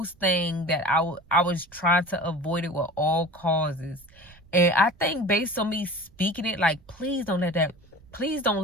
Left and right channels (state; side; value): noise; right; rumble, 26 dB below the sound